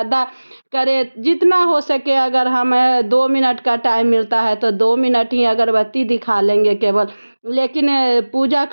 करे, जितना हो सके। अगर हमें 2 मिनट का टाइम मिलता है तो 2 मिनट ही अगरबत्ती दिखा लेंगे केवल। लेकिन पूजा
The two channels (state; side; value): inverted; both; correlation -1.00